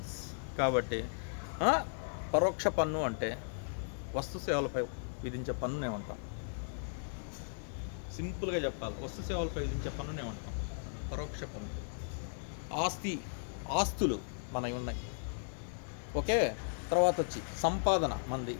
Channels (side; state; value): right; silent; digital silence